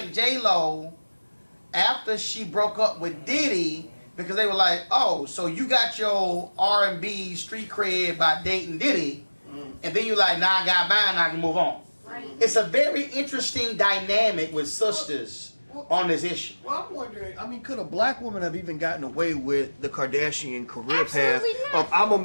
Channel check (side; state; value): both; inverted; correlation -1.00